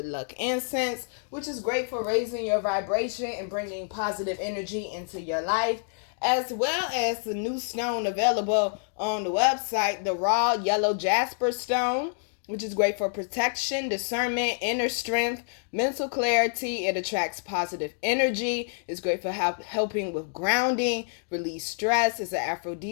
Luck Incense, which is great for raising your vibration and bringing positive energy into your life, as well as the new stone available on the website, the Raw Yellow Jasper Stone, which is great for protection, discernment, inner strength, mental clarity. It attracts positive energy. It's great for helping with grounding, release stress. It's an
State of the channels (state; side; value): silent; right; 59 dB below the other